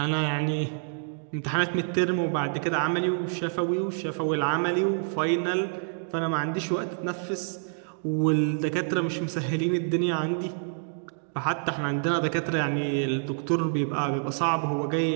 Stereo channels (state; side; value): silent; left; digital silence